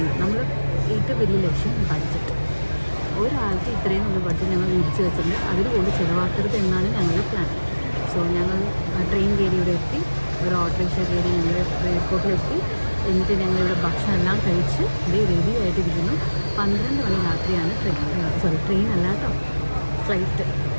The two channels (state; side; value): inverted; both; correlation -1.00